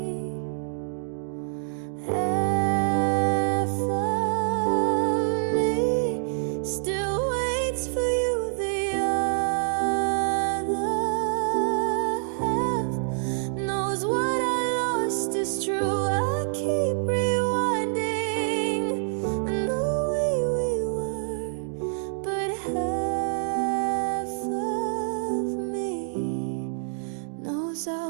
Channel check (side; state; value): left; silent; digital silence